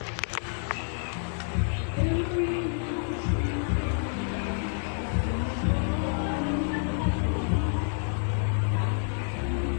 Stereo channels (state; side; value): silent; right; 57 dB below the other